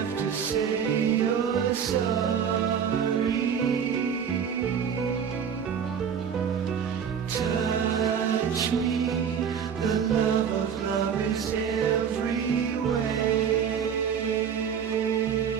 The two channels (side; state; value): left; quieter; 7.6 dB